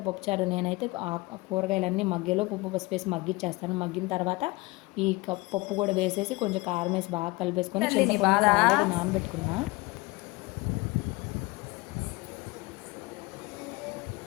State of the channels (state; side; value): quieter; right; 23.1 dB